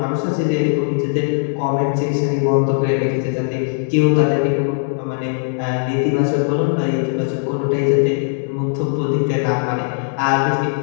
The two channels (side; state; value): right; silent; digital silence